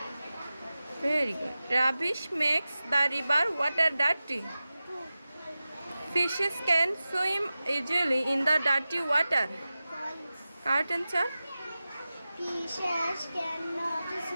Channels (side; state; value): both; inverted; correlation -0.95